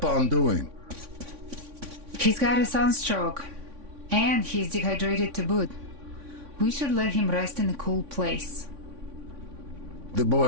doing? He's got a sunstroke. And he's dehydrated to boot. We should let him rest in a cool place. The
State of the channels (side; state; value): left; late; 3.5 ms